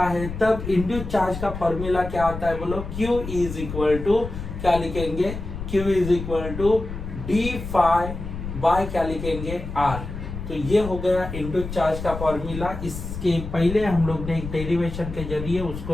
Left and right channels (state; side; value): noise; left; rumble, 8 dB below the sound